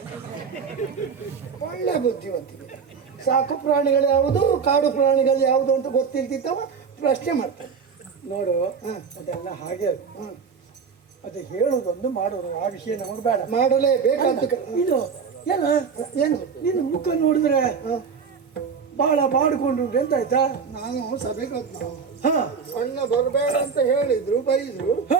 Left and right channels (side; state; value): left; quieter; 5.9 dB